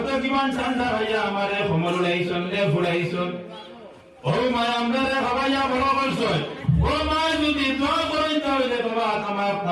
কিমান ঠান্ডা খাইয়া আমারে সমর উড়াইছন রে ফুড়াইছন। ও মা আমরা রে খাবাইয়া বড় করছো, ও মা যদি দোয়া করেন তাহলে বাবা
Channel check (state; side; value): identical; both; correlation 1.00